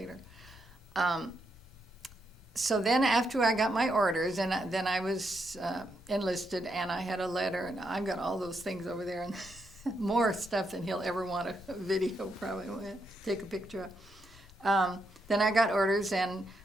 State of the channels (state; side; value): normal; both; correlation 0.80